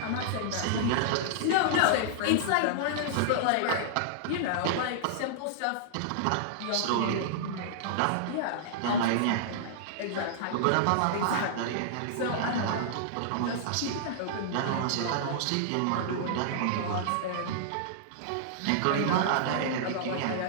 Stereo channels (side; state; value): both; different; correlation -0.02